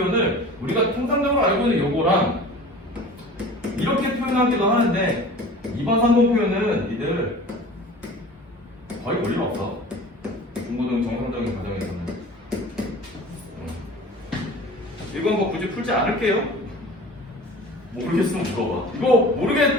우리가 통상적으로 알고 있는 요거랑 이렇게 표현하기도 하는데, 2번, 3번 표현은 니들 거의 볼 일 없어. 중고등 정상적인 과정에서는. 이건 뭐 굳이 풀지 않을게요. 모르겠으면 물어봐. 이거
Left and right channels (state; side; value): normal; both; correlation 0.40